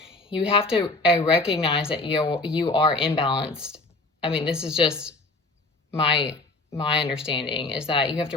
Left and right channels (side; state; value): right; quieter; 3.2 dB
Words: you have to recognize that you are imbalanced. I mean, this is just my understanding, is that you have to